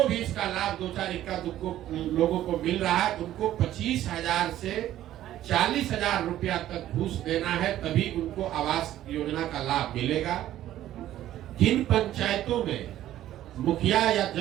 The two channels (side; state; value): left; quieter; 13.0 dB